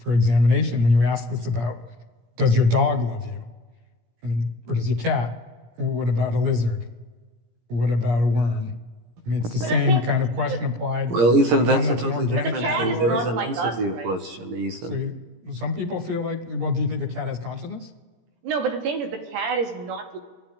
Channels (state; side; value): late; left; 17 ms